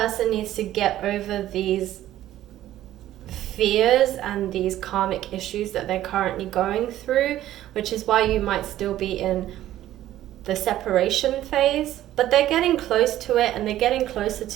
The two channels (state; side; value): quieter; left; 13.4 dB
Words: needs to get over these fears and these karmic issues that they're currently going through, which is why you might still be in the separation phase. But they're getting close to it, and they're getting closer